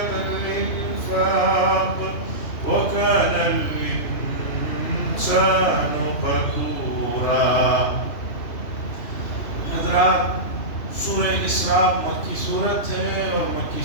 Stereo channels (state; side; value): late; right; 2.9 ms